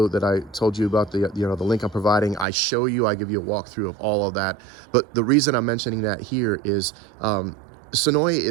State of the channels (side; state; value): left; drops out; at 2.5 s